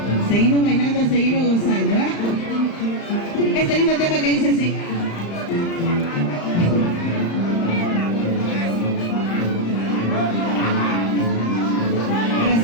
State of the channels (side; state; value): right; late; 35 ms